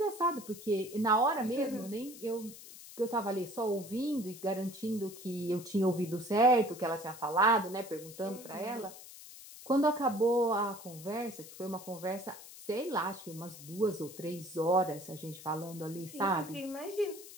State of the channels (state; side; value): noise; left; hiss, 16 dB below the sound